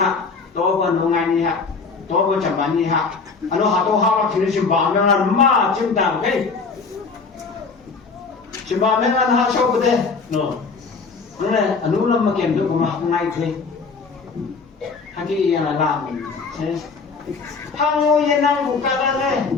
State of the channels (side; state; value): right; quieter; 4.7 dB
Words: tôi còn nông ngày này ha tôi còn chậm bán này ha anh nó tôi học thì nó chậm bán nó là mà chậm đào cái chậm bán nó là học sau bữa đây nó này anh nó làm mà kiểm được mà học ngay thôi hay cái là làm thế Hango yenang buka